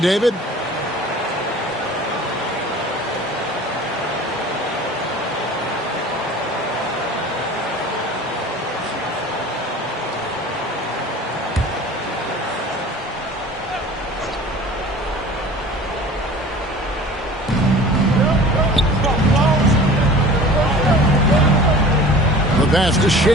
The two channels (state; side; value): normal; both; correlation 0.43